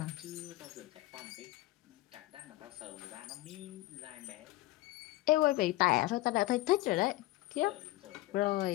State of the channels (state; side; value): quieter; right; 17.9 dB